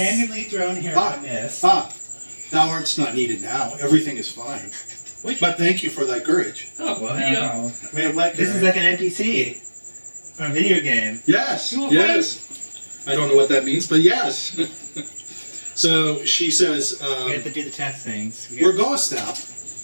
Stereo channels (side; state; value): both; inverted; correlation -1.00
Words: thrown here by mist. Thou art's not needed now. Everything is fine. But thank you for thy courage. Oh, Well, there you go. no. Wait, what? This is like an NPC from a video game. Yes, You yes. I don't know what that means, but yes. So she says, We have to do the test things. where goest thou?